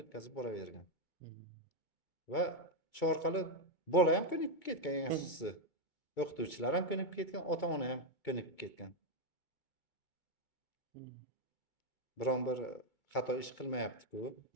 o'tkazib boravergan. Va shu orqali bola ham ko'nikib ketgan, eng asosiysi. O'qituvchilar ham ko'nikib ketgan, ota-ona ham ko'nikib ketgan. Biron bir xato ish qilmayapti-ku,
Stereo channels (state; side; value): late; right; 2.3 ms